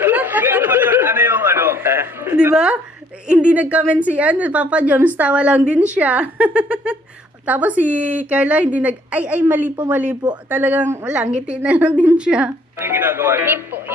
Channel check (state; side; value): normal; both; correlation 0.63